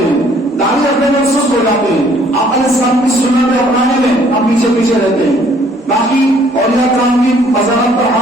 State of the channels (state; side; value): normal; both; correlation 0.61